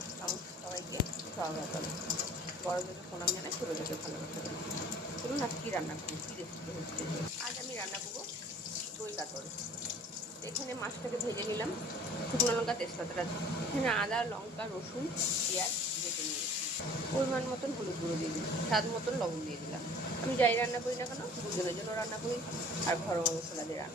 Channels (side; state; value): both; normal; correlation 0.48